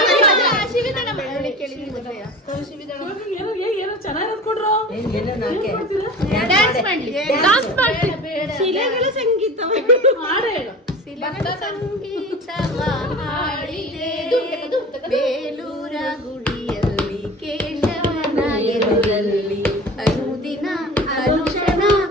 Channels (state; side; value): normal; both; correlation 0.37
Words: ಏನೋ ಚೆನ್ನಾಗಿರೋದು ಕೊಡ್ರು. ಶಿಲೆಗಳ ಸಂಗೀತ ಹಾಡು ಹೇಳು. ಬೇಲೂರ ಗುಡಿಯಲ್ಲಿ ಕೇಶವನ ಎದುರಲ್ಲಿ ಅನುದಿನ ಅನುಕ್ಷಣ